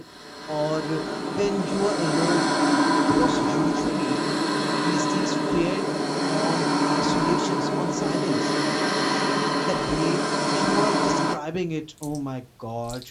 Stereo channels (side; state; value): both; identical; correlation 1.00